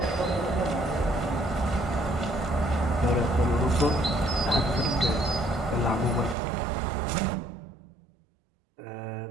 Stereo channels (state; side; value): drops out; left; at 6.4 s